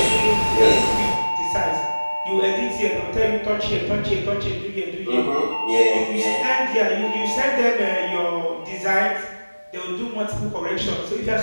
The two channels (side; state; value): both; inverted; correlation -1.00